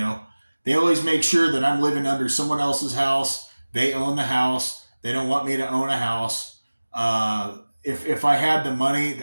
always make sure that I'm living under someone else's house. They own the house. They don't want me to own a house. If I had the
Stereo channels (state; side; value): inverted; both; correlation -1.00